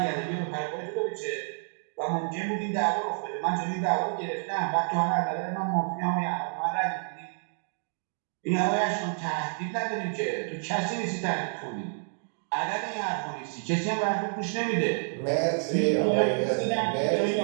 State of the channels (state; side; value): silent; left; digital silence